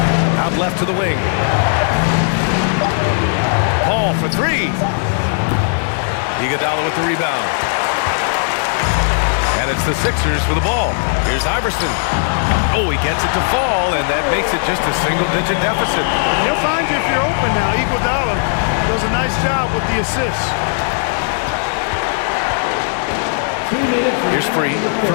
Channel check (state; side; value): silent; right; 68 dB below the other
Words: Out left to the wing. Paul for three. Iguodala with the rebound. And it's the Sixers for the ball. Here's Iverson. Oh, he gets it to fall, and that makes it just a single-digit deficit. He'll find you if you're open now. Iguodala does a nice job with the assist. Here's Free